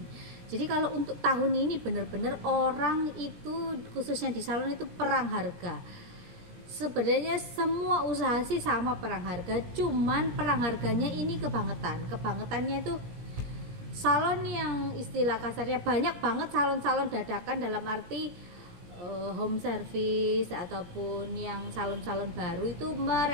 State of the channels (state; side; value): late; left; 17 ms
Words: Jadi kalau untuk tahun ini benar-benar orang itu khususnya di salon itu perang harga. Sebenarnya semua usaha sih sama perang harga, cuman perang harganya ini kebangetannya itu salon yang istilah kasarnya banyak banget salon-salon dadakan, dalam arti home service ataupun yang salon-salon baru itu